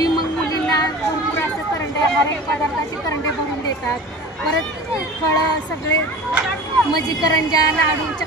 मग मुलींना भरपूर असं करंडे, हर एक पदार्थाचे करंडे भरून देतात, परत फळं सगळे म्हणजे करंजा, लाडू,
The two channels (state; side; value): normal; both; correlation 0.38